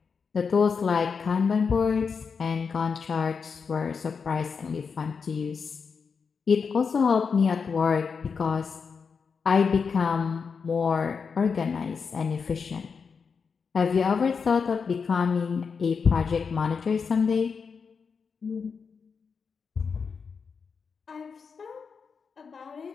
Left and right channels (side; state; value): right; quieter; 5.6 dB